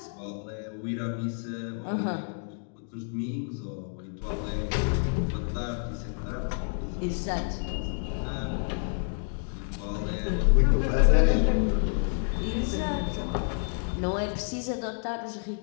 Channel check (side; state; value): right; silent; 59 dB below the other